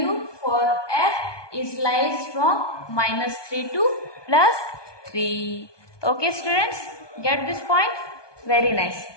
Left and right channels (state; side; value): late; right; 1.2 ms